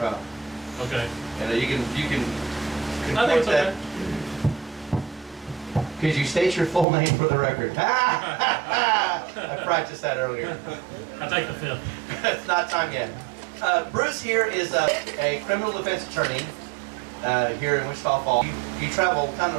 Okay. And you can I think it's okay. Could you state your full name for the record? I practiced that earlier. I take the fifth. It's not time yet. Bruce here is a criminal defense attorney here in Wichita Falls. You travel kind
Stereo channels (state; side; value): drops out; left; at 6.9 s